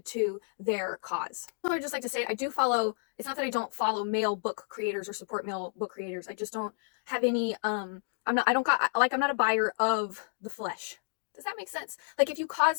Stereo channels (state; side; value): silent; right; digital silence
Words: to their cause. So I'd just like to say I do follow, it's not that I don't follow male book creators or support male book creators. I just don't have any, I'm not a buyer of the flesh. Does that make sense? Like if you